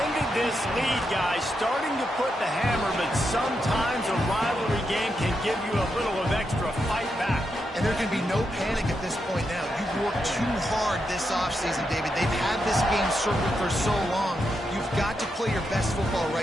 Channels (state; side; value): normal; both; correlation 0.84